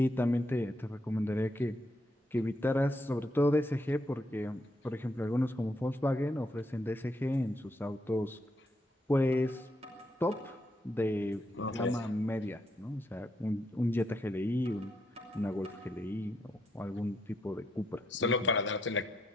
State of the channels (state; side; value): normal; both; correlation 0.78